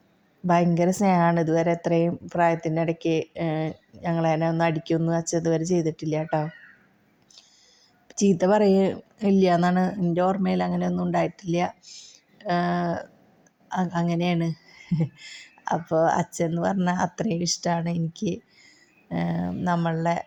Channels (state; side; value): identical; both; correlation 1.00